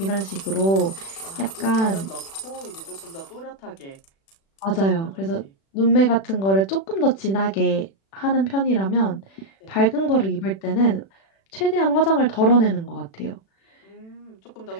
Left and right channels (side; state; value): right; late; 36 ms